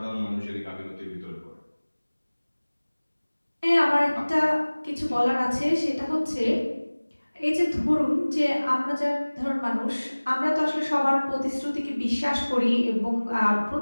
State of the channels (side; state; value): both; inverted; correlation -1.00